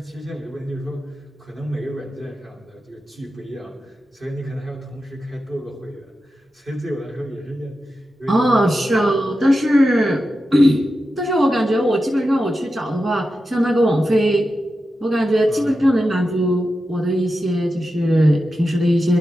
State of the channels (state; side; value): normal; both; correlation 0.90